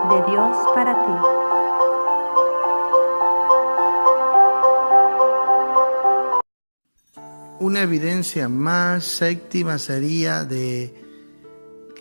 de Dios para ti. Una evidencia más, séptima, sería de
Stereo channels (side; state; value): both; inverted; correlation -1.00